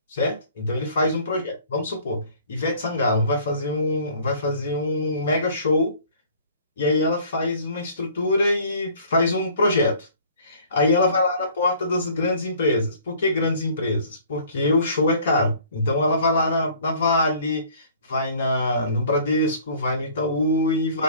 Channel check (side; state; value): both; inverted; correlation -0.53